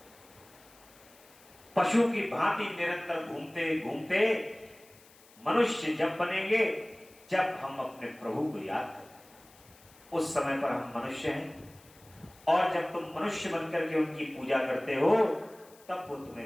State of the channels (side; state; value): left; noise; hiss, 25 dB below the sound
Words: पशु की भांति निरंतर घूमते घूमते मनुष्य जब बनेंगे, जब हम अपने प्रभु को याद करें, उस समय पर हम मनुष्य हैं। और जब तुम मनुष्य बनकर के उनकी पूजा करते हो, तब वो